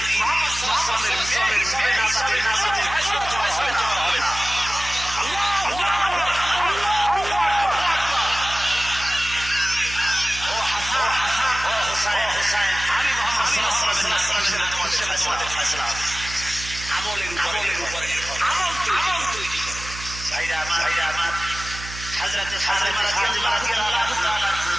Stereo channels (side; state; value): right; noise; hum, 12 dB below the sound